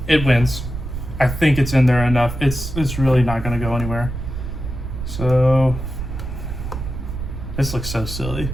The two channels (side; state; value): right; noise; rumble, 6 dB below the sound